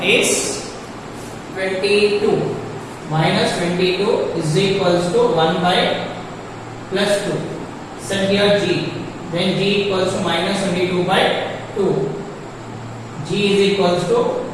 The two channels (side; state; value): both; identical; correlation 1.00